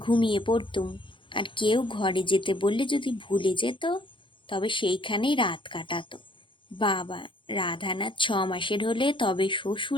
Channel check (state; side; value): late; right; 0.24 ms